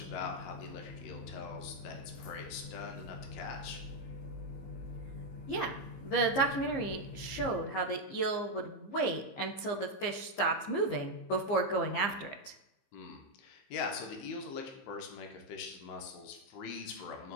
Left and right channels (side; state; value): right; late; 15 ms